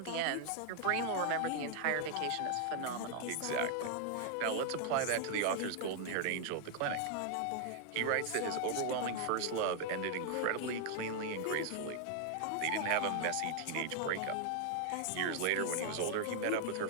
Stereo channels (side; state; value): both; different; correlation 0.00